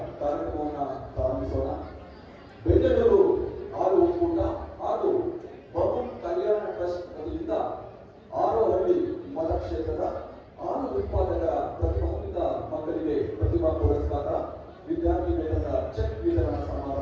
ಕಾರ್ಯಕ್ರಮವನ್ನು ಪ್ರಾರಂಭಿಸೋಣ. ಬೆಂಗಳೂರು ಹಾಲು ಒಕ್ಕೂಟ ಹಾಗೂ ಬಮೂಲ್ ಕಲ್ಯಾಣ ಟ್ರಸ್ಟ್ ವತಿಯಿಂದ ಹಾರೋಹಳ್ಳಿ ಮತಕ್ಷೇತ್ರದ ಹಾಲು ಉತ್ಪಾದಕರ ಪ್ರತಿಭಾನ್ವಿತ ಮಕ್ಕಳಿಗೆ ಪ್ರತಿಭಾ ಪುರಸ್ಕಾರ, ವಿದ್ಯಾರ್ಥಿ ವೇತನದ ಚೆಕ್ ವಿತರಣಾ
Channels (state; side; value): identical; both; correlation 1.00